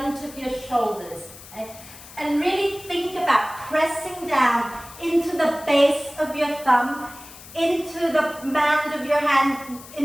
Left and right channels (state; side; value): noise; left; hiss, 18 dB below the sound